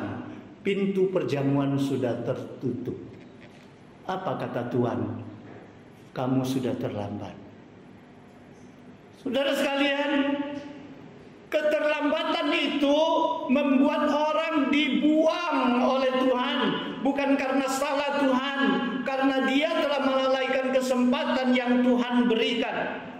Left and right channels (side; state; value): both; identical; correlation 1.00